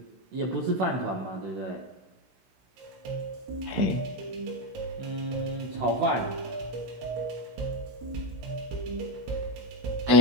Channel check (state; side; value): late; left; 16 ms